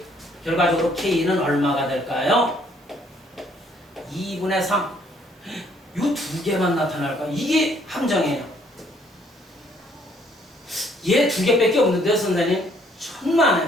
결과적으로 k는 얼마가 될까요? 2분의 3. 이 두 개만 나타날까? 이게 함정이에요. 얘 두 개밖에 없는데요, 선생님? 천만에.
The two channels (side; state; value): both; normal; correlation 0.64